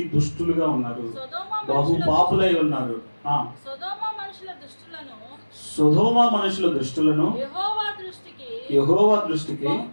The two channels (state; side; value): inverted; both; correlation -1.00